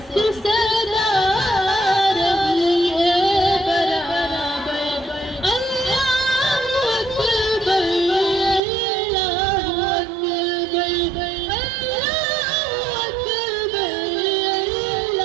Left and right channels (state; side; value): drops out; left; at 8.6 s